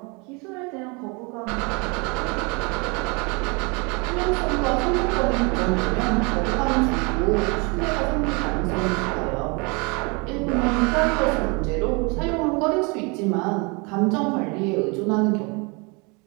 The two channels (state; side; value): quieter; left; 30.1 dB